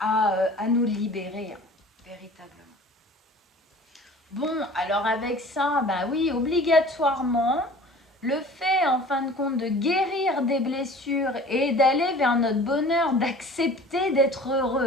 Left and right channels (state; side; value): normal; both; correlation 0.44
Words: nous libérer, hein, véritablement. Bon, alors avec ça, bah oui, obligatoirement, le fait en fin de compte de guérir des blessures et d'aller vers notre bonheur, d'accepter d'être